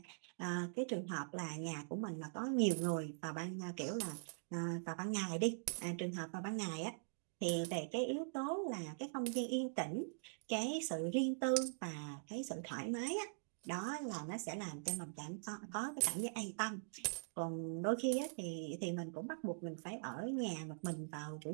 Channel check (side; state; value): left; silent; digital silence